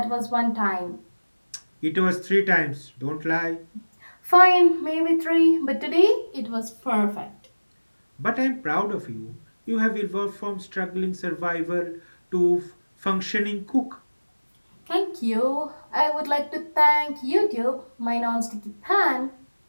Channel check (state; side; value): inverted; both; correlation -1.00